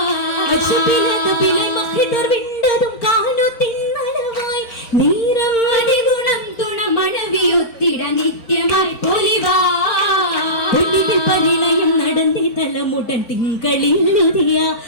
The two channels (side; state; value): right; late; 4.4 ms